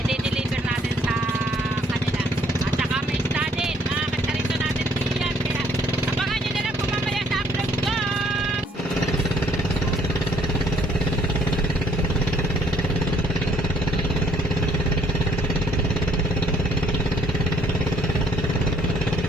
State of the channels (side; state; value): both; normal; correlation 0.64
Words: natin sa kanila. At saka may isda din. Mga kasarito natin diyan. Kaya abangan nyo na lang po mamaya sa upload ko.